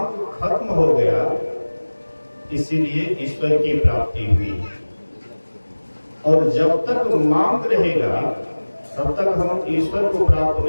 खत्म हो गया, इसीलिए ईश्वर की प्राप्ति हुई। और जब तक मांग रहेगा तब तक हम ईश्वर को प्राप्त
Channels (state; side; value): inverted; both; correlation -1.00